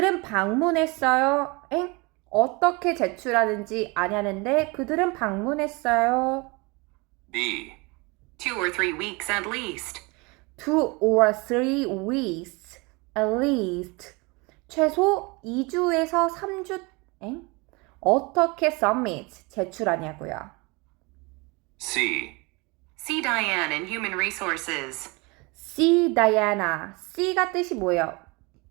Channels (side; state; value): left; quieter; 27.1 dB